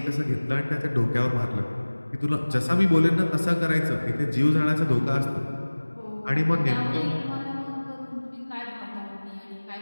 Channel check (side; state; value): both; inverted; correlation -1.00